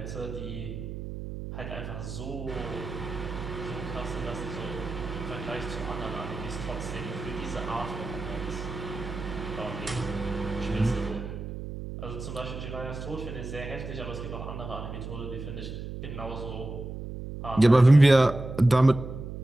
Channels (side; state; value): right; noise; hum, 8 dB below the sound